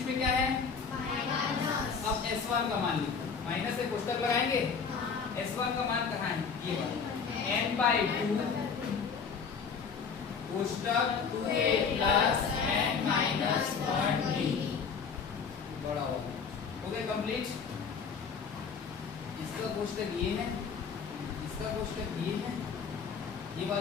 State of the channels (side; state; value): right; quieter; 5.9 dB